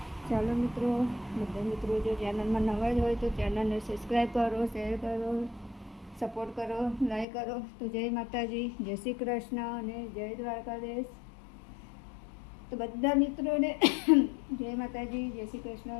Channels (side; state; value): right; drops out; at 7.2 s